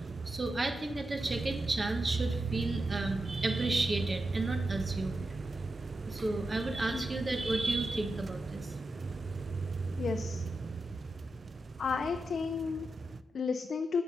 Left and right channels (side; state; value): both; normal; correlation 0.89